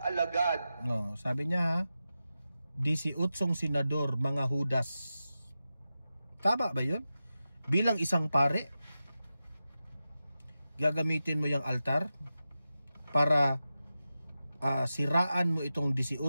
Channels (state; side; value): inverted; both; correlation -0.92